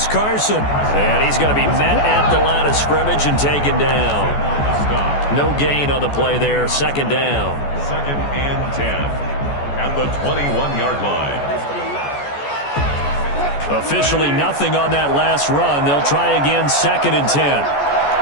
Carson. And he's going to be met at the line of scrimmage and taken down. No gain on the play there. Second down. Second and 10 at the 21-yard line. Officially nothing on that last run. They'll try again, second and 10.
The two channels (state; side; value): late; right; 14 ms